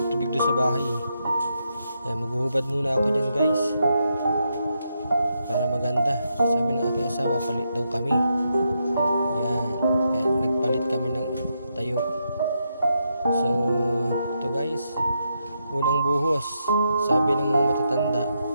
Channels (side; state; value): both; inverted; correlation -0.82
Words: doon sa bahay. Yan, maghuhubad muna ako dyan guys. Para maganda. Sabi ng aking asawa, palit daw kami. Yan. Kaya nagpalit kami ng tayo. So, ito guys. Unang buhos. Sabi ng mga matatanda,